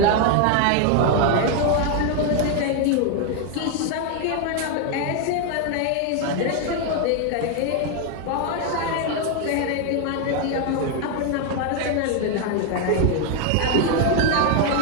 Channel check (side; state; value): both; different; correlation 0.01